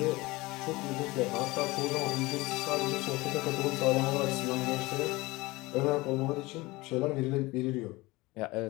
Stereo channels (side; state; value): right; quieter; 21.7 dB